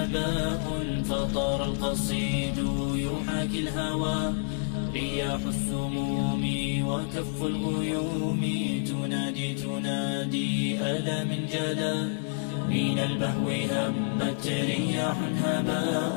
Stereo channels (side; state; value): right; silent; digital silence